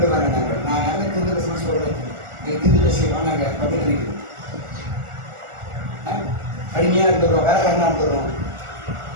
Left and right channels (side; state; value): left; late; 1.4 ms